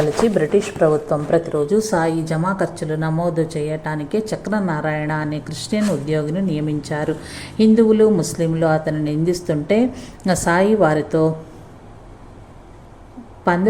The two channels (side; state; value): both; identical; correlation 1.00